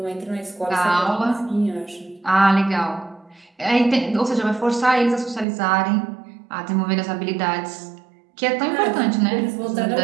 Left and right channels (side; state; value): left; drops out; at 5.5 s